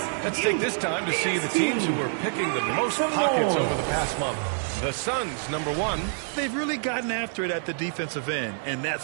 Let's take this time to see the teams who were picking the most pockets over the past month. The Suns, number 1. They've really gotten after it at the defensive end, and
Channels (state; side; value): silent; left; digital silence